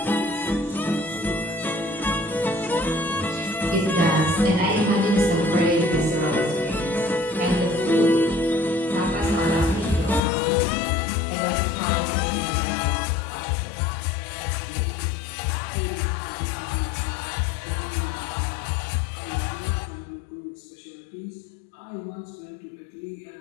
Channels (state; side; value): drops out; right; at 10.2 s